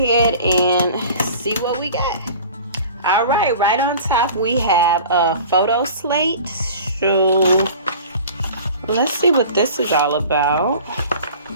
and see what we got. All right, right on top we have a photo slate. So let's see what this is all about.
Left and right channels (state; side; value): inverted; both; correlation -0.42